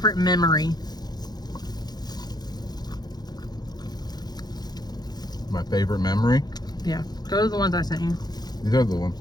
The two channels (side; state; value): right; late; 0.19 ms